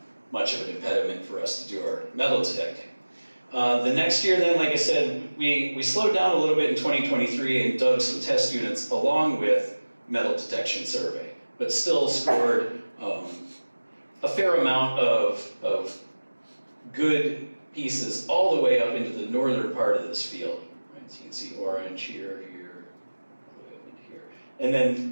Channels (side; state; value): both; inverted; correlation -1.00